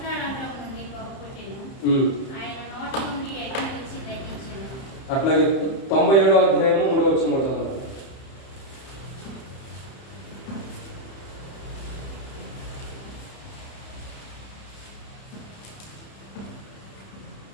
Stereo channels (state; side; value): late; right; 30 ms